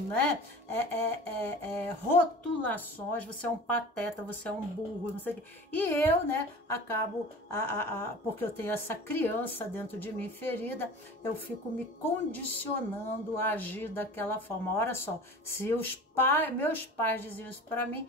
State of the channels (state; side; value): normal; both; correlation 0.38